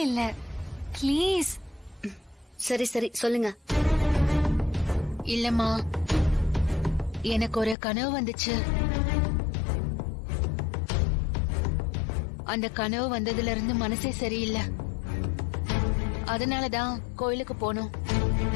இல்ல. ப்ளீஸ். சரி சரி, சொல்லுங்க. இல்லம்மா, எனக்கு ஒரு கனவு வந்துச்சு. அந்த கனவு வந்ததுல இருந்து மனசே சரியில்லை. அதனாலதான் கோயிலுக்கு போனோம்.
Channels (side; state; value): right; drops out; at 7.8 s